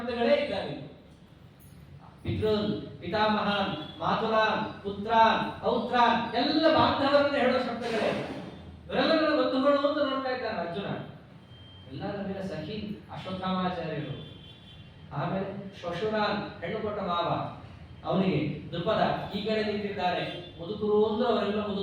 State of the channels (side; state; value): both; identical; correlation 1.00